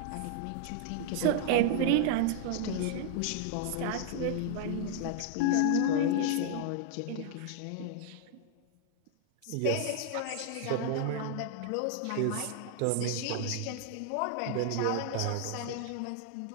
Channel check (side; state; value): both; different; correlation 0.00